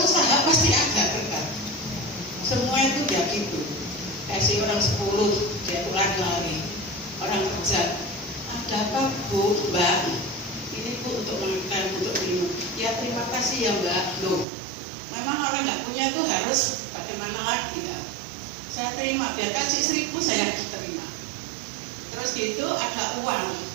pasti agak dekat. Semua itu ya gitu. Kasih orang 10, dia pulang lari. hajat. Ada apa Bu, Mbak? Ini Bu untuk makan, untuk minum. Ya terima kasih ya Mbak. Loh, memang orang nggak punya itu harus bagaimana lagi ya? Saya terima, dia kasih 1.000 saya terima. Terus gitu ada uang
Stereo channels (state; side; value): drops out; left; at 14.5 s